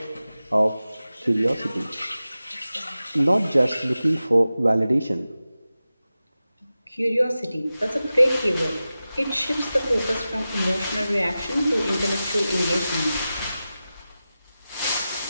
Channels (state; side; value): inverted; both; correlation -0.94